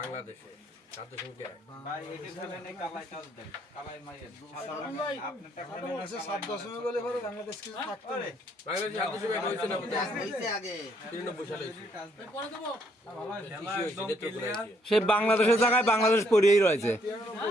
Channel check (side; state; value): both; normal; correlation 0.69